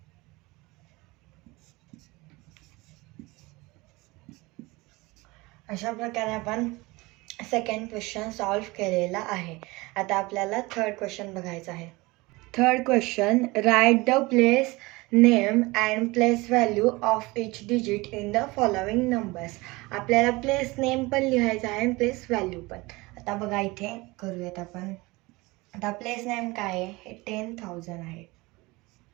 अशा प्रकारे आपण सेकंड क्वेश्चन सॉल्व केलेला आहे. आता आपल्याला थर्ड क्वेश्चन बघायचा आहे. Third question, write the place name and place value of each digit in the following numbers. आपल्याला प्लेस नेम पण लिहायचा आहे आणि प्लेस व्हॅल्यू पण. आता बघा इथे करूयात आपण. आता प्लेस नेम काय आहे, हे 10,000 आहे.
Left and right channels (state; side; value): quieter; left; 22.8 dB